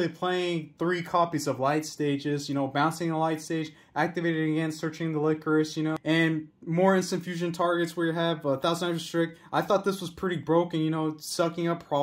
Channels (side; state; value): both; identical; correlation 1.00